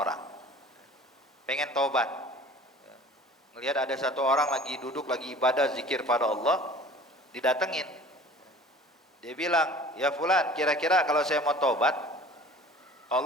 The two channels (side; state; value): both; normal; correlation 0.45